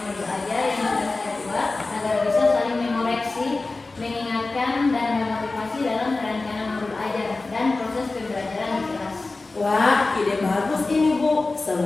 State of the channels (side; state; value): right; quieter; 3.4 dB